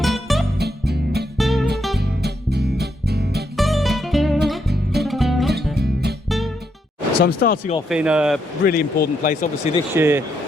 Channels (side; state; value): both; normal; correlation 0.78